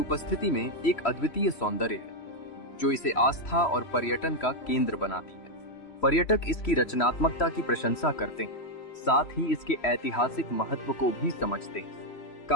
में एक अद्वितीय सौंदर्य है, जो इसे आस्था और पर्यटन का केंद्र बनाती है। पर्यटक इसकी रचनात्मकता की प्रशंसा करते हैं, साथ ही इसके ऐतिहासिक महत्व को भी समझते हैं।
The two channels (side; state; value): right; late; 3.1 ms